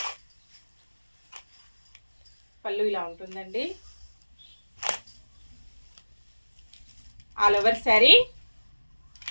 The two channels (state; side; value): inverted; both; correlation -1.00